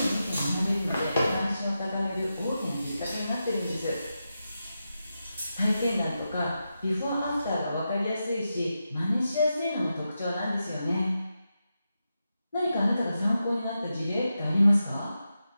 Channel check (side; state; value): both; inverted; correlation -0.89